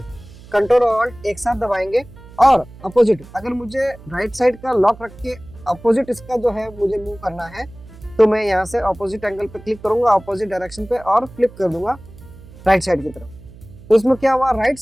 ऑल्ट एक साथ दबाएंगे और अपोजिट, अगर मुझे राइट साइड का लॉक रख के अपोजिट इसका जो है मुझे मूव करना है, तो मैं यहाँ से अपोजिट एंगल पे क्लिक करूंगा, अपोजिट डायरेक्शन पे, और फ्लिप कर दूंगा राइट साइड की तरफ। तो इसमें क्या हुआ, राइट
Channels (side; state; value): right; noise; hum, 20 dB below the sound